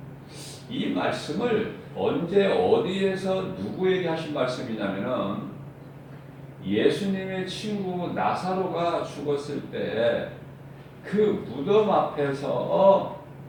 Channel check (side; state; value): both; identical; correlation 1.00